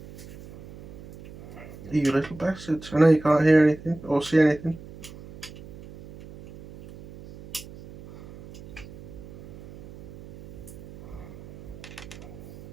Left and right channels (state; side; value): noise; right; hum, 16 dB below the sound